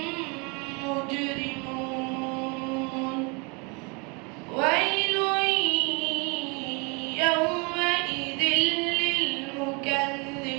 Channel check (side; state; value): left; quieter; 31.0 dB